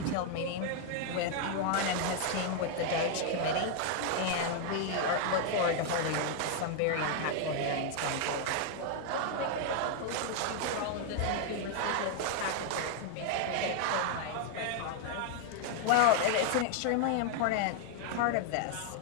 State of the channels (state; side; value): different; both; correlation 0.00